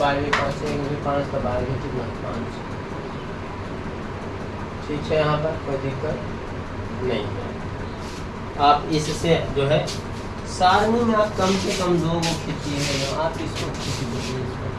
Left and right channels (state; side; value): identical; both; correlation 1.00